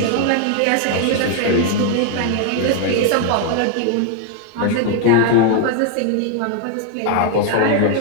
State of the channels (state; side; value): different; both; correlation 0.00